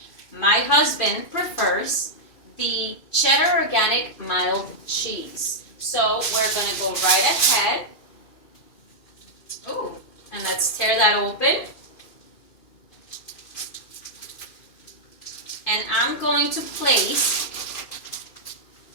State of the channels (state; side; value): late; right; 2.6 ms